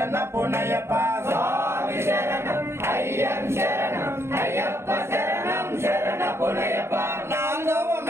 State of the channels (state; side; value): late; left; 0.12 ms